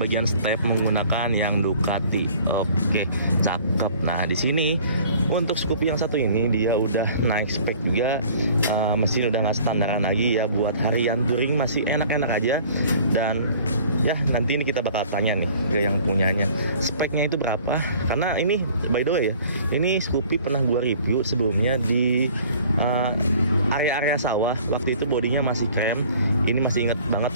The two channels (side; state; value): both; inverted; correlation -0.51